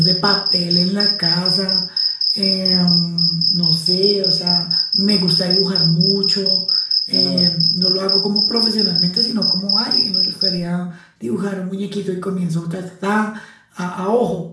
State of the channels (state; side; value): identical; both; correlation 1.00